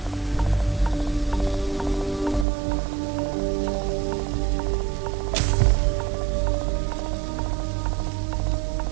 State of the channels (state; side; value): drops out; left; at 2.5 s